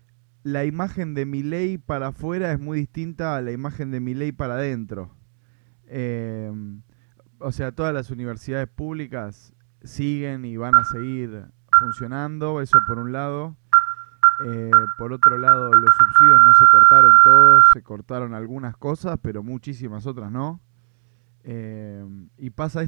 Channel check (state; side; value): silent; left; digital silence